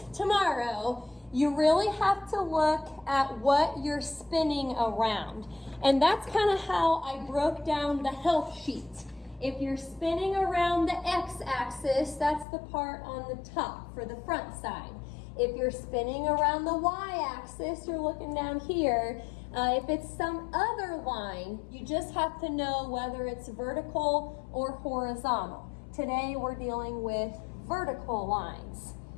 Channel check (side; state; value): right; drops out; at 12.5 s